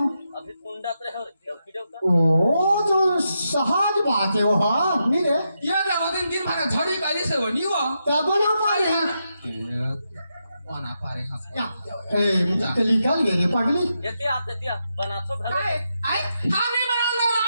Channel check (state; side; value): inverted; both; correlation -0.85